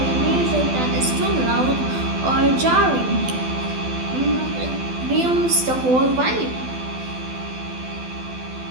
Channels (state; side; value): late; left; 12 ms